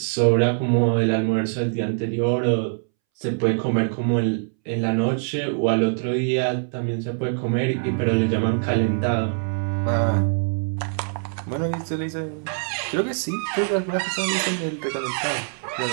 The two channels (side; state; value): left; silent; 63 dB below the other